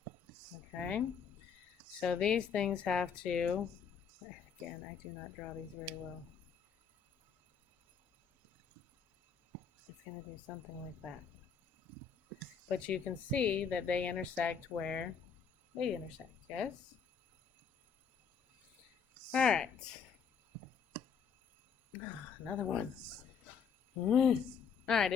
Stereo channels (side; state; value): right; quieter; 6.5 dB